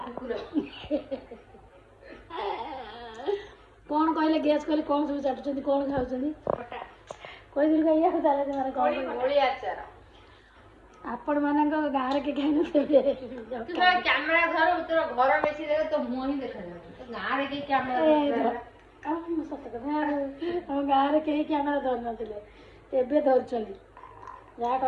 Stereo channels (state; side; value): identical; both; correlation 1.00